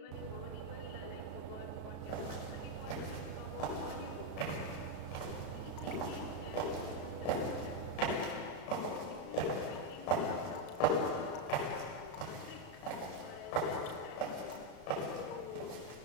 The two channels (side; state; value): right; late; 35 ms